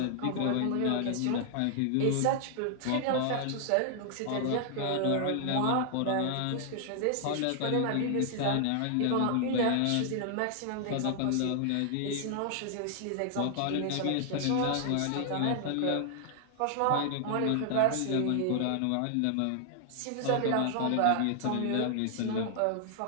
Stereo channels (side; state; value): both; different; correlation 0.00